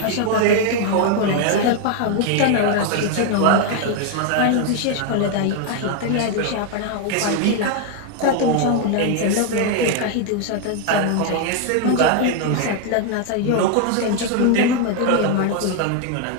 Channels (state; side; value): different; both; correlation 0.00